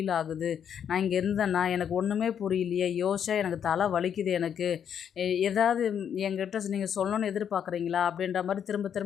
ஆகுது, நான் இங்கே இருந்தேன்னா எனக்கு ஒன்றுமே புரியலையே, யோசிச்சா எனக்கு தலை வலிக்குது, எனக்கு ஏதாவது என்கிட்ட நீங்கள் சொல்லணும்னு எதிர்பார்க்குறீங்களா அப்படின்ற மாதிரி திரும்ப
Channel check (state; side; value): quieter; right; 8.5 dB